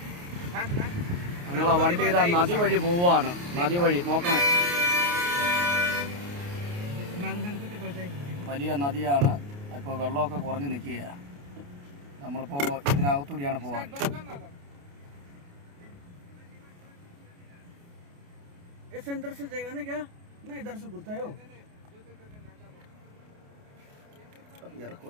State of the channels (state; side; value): late; left; 28 ms